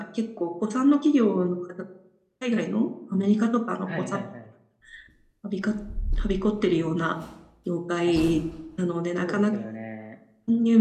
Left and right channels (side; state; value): both; identical; correlation 1.00